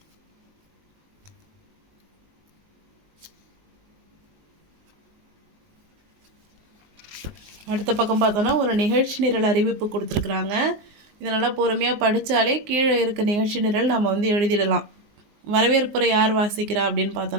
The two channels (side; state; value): left; late; 19 ms